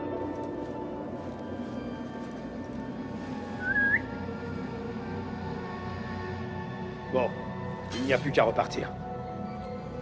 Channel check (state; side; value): identical; both; correlation 1.00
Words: Bon, il n'y a plus qu'à repartir.